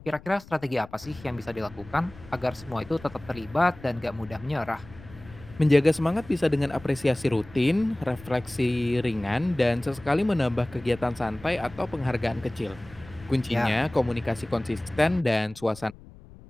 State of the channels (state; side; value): noise; left; rumble, 20 dB below the sound